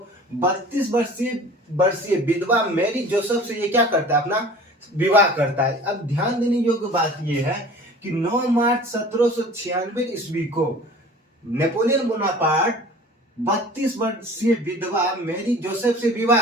32 वर्षीय विधवा मैरी जोसेफ से ये क्या करता है? अपना विवाह करता है। अब ध्यान देने योग्य बात ये है कि 9 मार्च 1796 ईस्वी को नेपोलियन बोनापार्ट 32 वर्षीय विधवा मैरी जोसेफ से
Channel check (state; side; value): normal; both; correlation 0.44